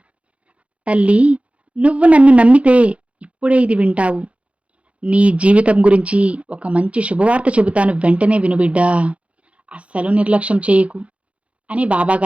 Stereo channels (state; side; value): late; left; 0.063 ms